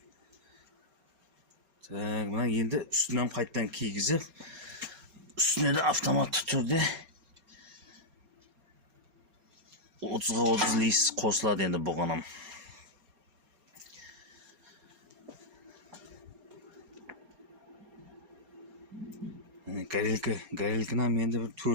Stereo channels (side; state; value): left; late; 4.3 ms